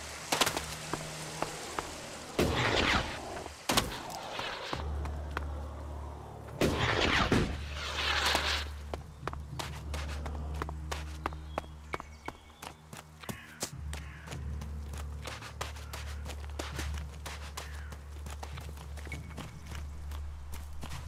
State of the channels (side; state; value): both; identical; correlation 1.00